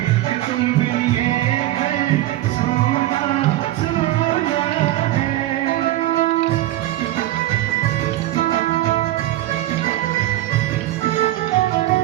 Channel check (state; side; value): quieter; left; 15.2 dB